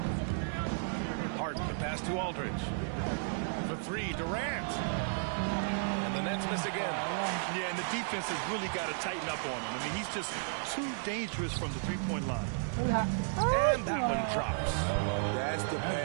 Harden, the pass to Aldridge. For 3, Durant. And the Nets miss again. Yeah, and the defense has really got to tighten up on him. I mean, he's just too dangerous from the three-point line. And that one drops. That's the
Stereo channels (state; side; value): silent; left; 55 dB below the other